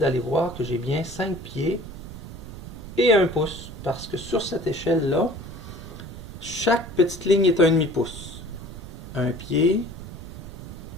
voir que j'ai bien 5 pieds et 1 pouce. Parce que sur cette échelle-là, chaque petite ligne est 1/2 pouce. Un pied,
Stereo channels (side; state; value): right; noise; rumble, 12 dB below the sound